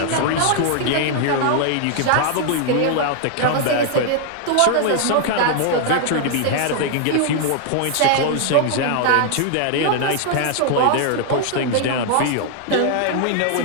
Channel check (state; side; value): different; both; correlation 0.00